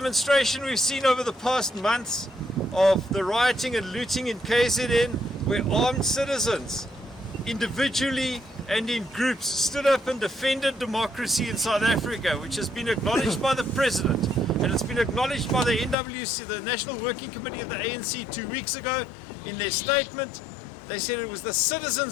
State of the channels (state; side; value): drops out; right; at 16.0 s